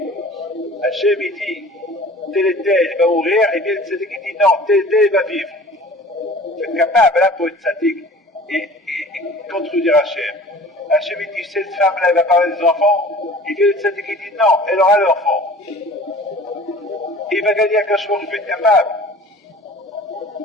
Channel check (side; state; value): both; normal; correlation 0.45